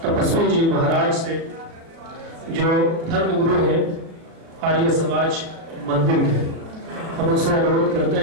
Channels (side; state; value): left; late; 37 ms